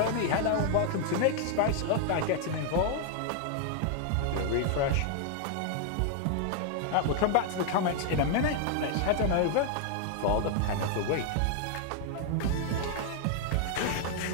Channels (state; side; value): different; both; correlation 0.00